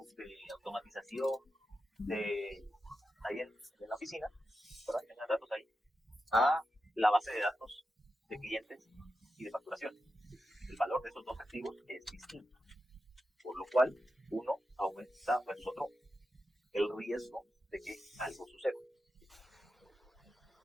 de automatización ahí en la oficina, ¿verdad? Que tengan datos ahí, a la base de datos de clientes y de facturación. El valor de esos dos activos es distinto, por lo cual uno aumenta versus otro el riesgo de que algo suceda.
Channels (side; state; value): both; normal; correlation 0.89